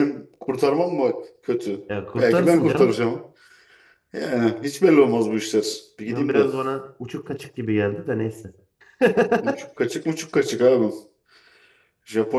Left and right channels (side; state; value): both; identical; correlation 1.00